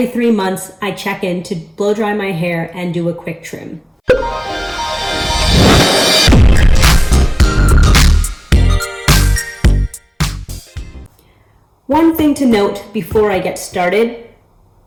3 months I check in to blow dry my hair and do a quick trim. One thing to note before I get started:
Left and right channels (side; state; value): both; identical; correlation 1.00